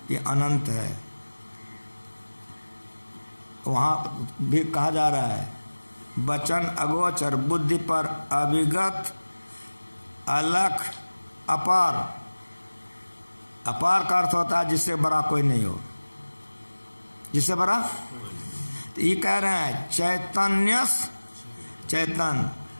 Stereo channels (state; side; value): inverted; both; correlation -1.00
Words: ये अनंत है। वहाँ भी कहा जा रहा है, वचन अगोचर, बुद्धि पर अविगत, अलख, अपार। अपार का अर्थ होता है जिससे बड़ा कोई नहीं हो, जिससे बड़ा। तो ये कह रहे हैं चैतन्य चेतन,